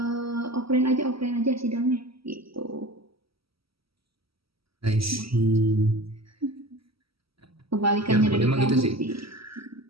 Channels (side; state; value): left; late; 0.75 ms